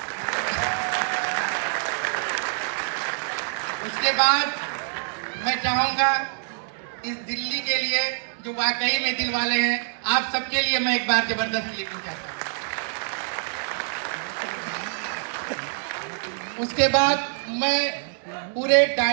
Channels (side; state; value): left; silent; digital silence